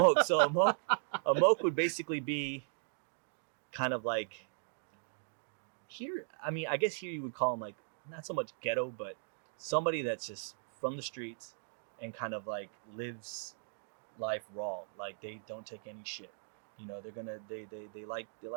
So a moke would basically be kind of like here. I mean, I guess here you would call them like not so much ghetto, but somebody that's just from the streets and kind of like lives life raw. Like they don't take any shit. They're gonna they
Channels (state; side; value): silent; left; digital silence